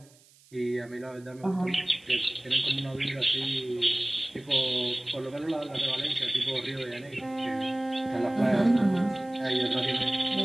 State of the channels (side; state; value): right; noise; hiss, 28 dB below the sound